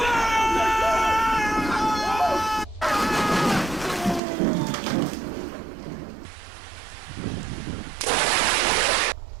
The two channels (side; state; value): left; drops out; at 4.2 s